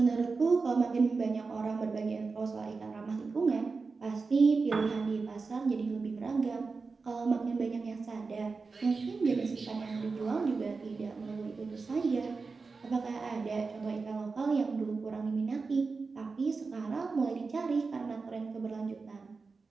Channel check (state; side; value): quieter; left; 4.4 dB